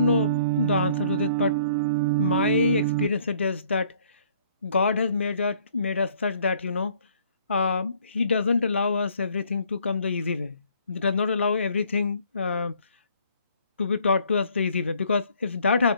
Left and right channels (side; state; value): both; inverted; correlation -0.60